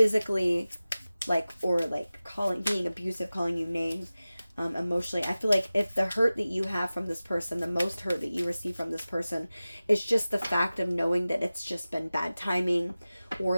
like, or like being abusive, calling you names, emotionally. I feel like if the hurt that you have from this person, the most hurt that you receive from this person, is just the fact of knowing that it's just been bad timing,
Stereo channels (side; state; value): both; inverted; correlation -0.96